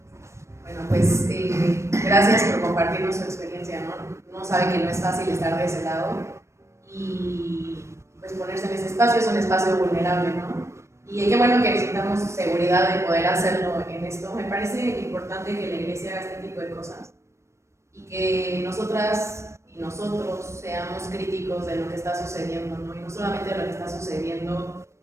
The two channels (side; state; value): left; late; 0.13 ms